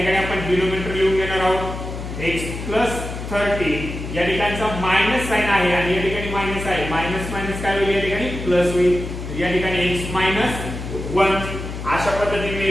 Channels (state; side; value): noise; left; hum, 8 dB below the sound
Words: आपण डिनोमिनेटर लिहून घेणार आहोत x प्लस 13 या ठिकाणचा मायनस साइन आहे आणि या ठिकाणी मायनस आहे मायनस मायनस काय होईल या ठिकाणी प्लस होईल या ठिकाणी x मायनस 1 अशा पद्धतीने